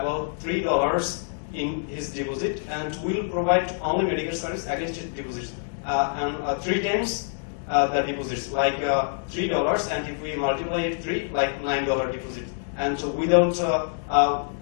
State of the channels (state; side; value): silent; right; digital silence